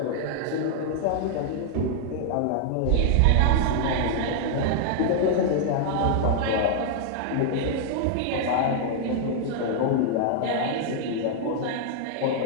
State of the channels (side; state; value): both; different; correlation -0.01